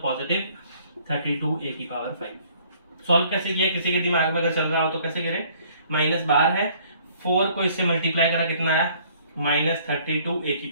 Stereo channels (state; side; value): inverted; both; correlation -0.59